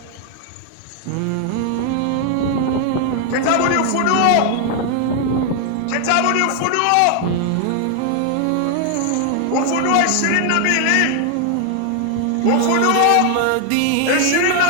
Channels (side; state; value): both; different; correlation 0.00